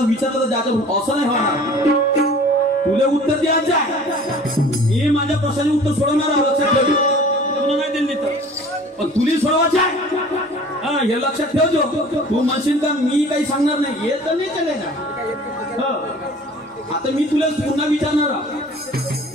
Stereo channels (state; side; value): normal; both; correlation 0.46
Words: जायचं, असं नाही होणार. तुला उत्तर द्यायचं आहे, मी माझ्या प्रश्नाचे उत्तर सोडवणार आहे, लक्षात ठेव. तुला नाही दिली तर पण तुला सोडवायचं आहे, हे लक्षात ठेवतो. तू म्हणशील का मी काही सांगणार नाही, हे तर नाही चालेल ना. आता मी तुला पुन्हा